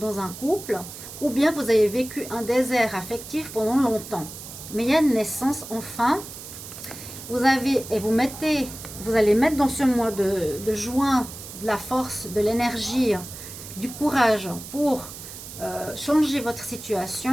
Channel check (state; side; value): noise; right; hiss, 13 dB below the sound